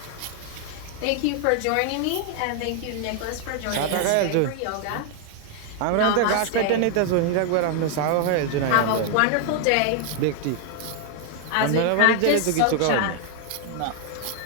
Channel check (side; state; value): both; different; correlation 0.00